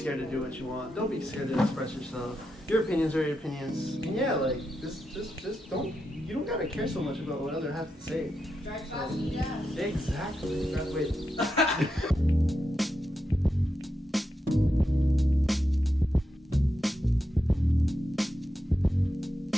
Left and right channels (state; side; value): normal; both; correlation 0.86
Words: to do what you want. Don't be scared to express yourself. Your opinions are your opinions. And yeah, just don't. You don't gotta care so much about what others have to say. Drive fast and jazz. Exactly. Wait.